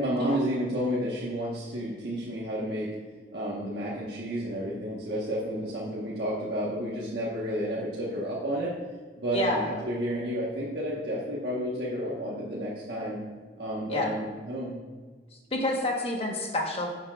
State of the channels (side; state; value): both; normal; correlation 0.37